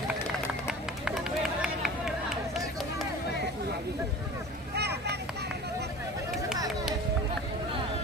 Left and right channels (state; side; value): normal; both; correlation 0.39